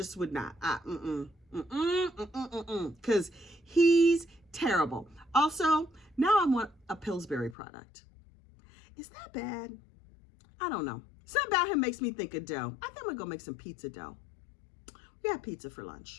would not. Because he's terrible. Also, now I want a Pillsbury product. Is that bad? I don't know. Something about him makes me think of dough. I think I'm gonna go make some pizza dough. We had pizza for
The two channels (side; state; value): right; drops out; at 7.6 s